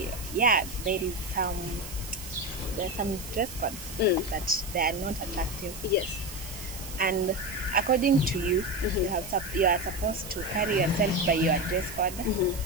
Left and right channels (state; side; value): noise; right; hiss, 12 dB below the sound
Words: yeah, there are some dress codes that they are not attractive. Yes. And according to you, you are supposed to carry yourself by your dress code.